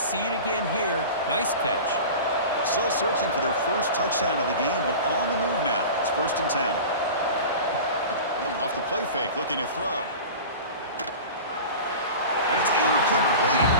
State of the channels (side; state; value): both; inverted; correlation -0.34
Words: it again here. Nice catch. Still searching for their first touchdown of the game, but on the move now. It's 1st and 10. Off the play fake, looking to throw. And it's incomplete.